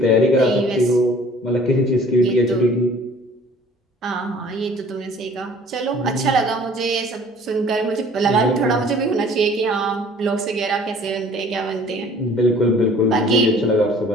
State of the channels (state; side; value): normal; both; correlation 0.51